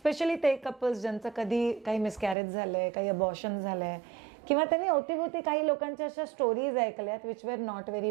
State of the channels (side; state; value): left; drops out; at 2.4 s